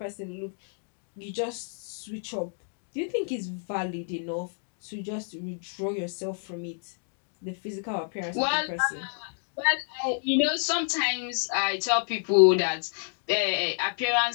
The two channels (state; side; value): silent; right; 58 dB below the other